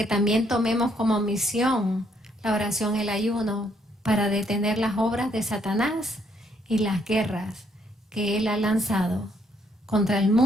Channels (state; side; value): normal; both; correlation 0.70